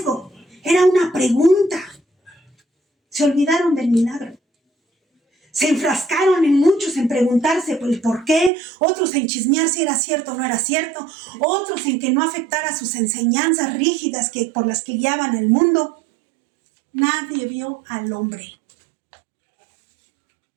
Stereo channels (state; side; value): drops out; left; at 8.5 s